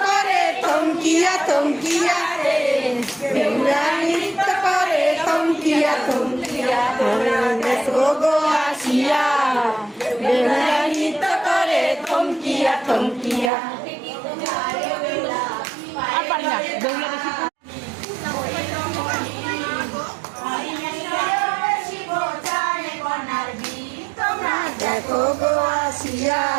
করে থমকিয়া থমকিয়া, বেহুলা নৃত্য করে থমকিয়া থমকিয়া। দেখো গো আসিয়া, বেহুলা নৃত্য করে থমকিয়া থমকিয়া। আর পারি না, বেহুলা বেশি দেখো গো আসিয়া,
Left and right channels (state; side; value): drops out; left; at 13.5 s